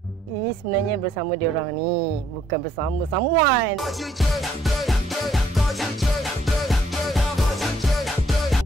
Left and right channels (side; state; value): both; normal; correlation 0.67